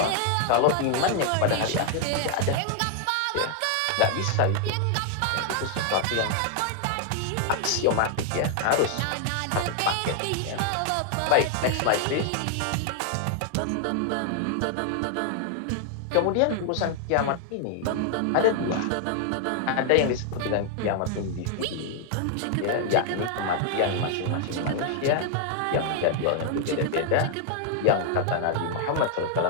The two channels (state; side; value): different; both; correlation 0.00